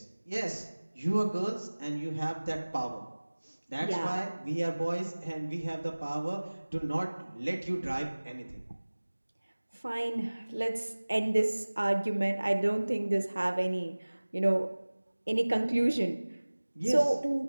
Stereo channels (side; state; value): both; inverted; correlation -1.00